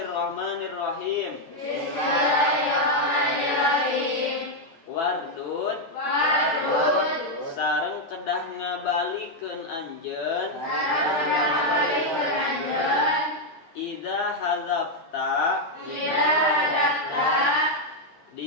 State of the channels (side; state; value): right; late; 12 ms